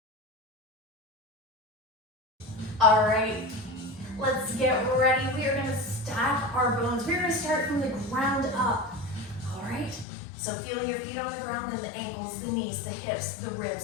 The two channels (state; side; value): drops out; right; at 10.1 s